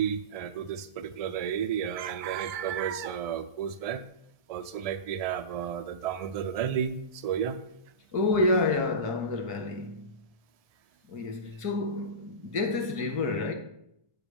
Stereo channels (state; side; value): late; left; 1.7 ms